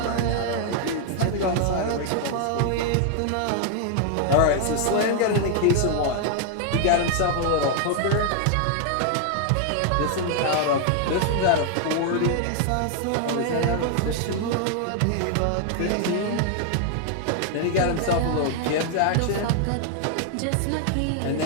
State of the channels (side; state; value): both; different; correlation 0.00